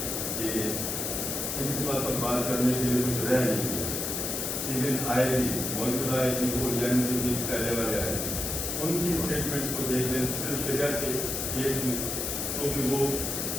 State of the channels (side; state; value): left; noise; hiss, 2 dB below the sound